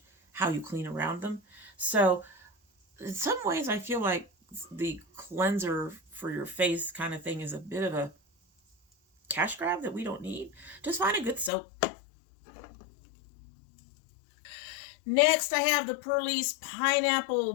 how you clean around them. So in some ways, I feel like the cleanser for your face kind of thing is a bit of a cash grab that we don't need. Just find a good soap. Next, I have the Perlis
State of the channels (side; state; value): right; drops out; at 11.5 s